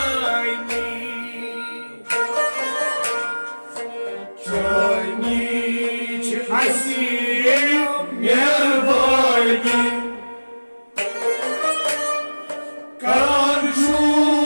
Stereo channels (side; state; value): both; inverted; correlation -1.00